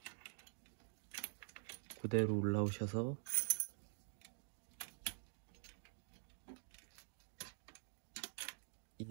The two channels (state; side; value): silent; left; digital silence